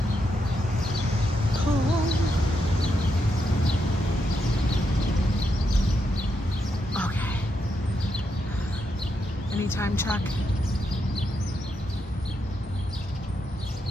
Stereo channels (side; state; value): both; normal; correlation 0.82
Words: Cool. Okay. Any time check?